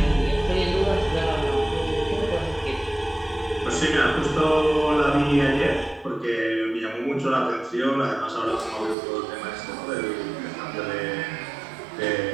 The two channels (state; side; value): drops out; left; at 9.0 s